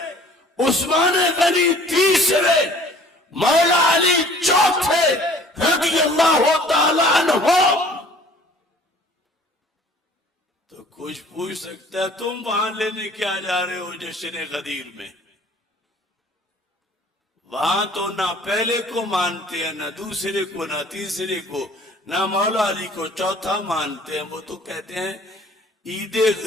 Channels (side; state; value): both; normal; correlation 0.52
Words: عثمان غنی تیسرے، مولا علی چوتھے رضی اللہ تعالی عنہ. تو کچھ پوچھ سکتا ہے تم وہاں لینے کیا جا رہے ہو جشن غدیر میں؟ وہاں تو نہ پہلے کو مانتے ہیں، نہ دوسرے کو، نہ تیسرے کو، نہ مولا علی کو چوتھا مانتے ہیں. وہ تو کہتے ہیں عید